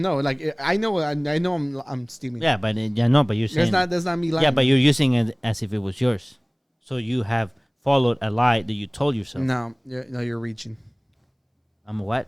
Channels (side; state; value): both; identical; correlation 1.00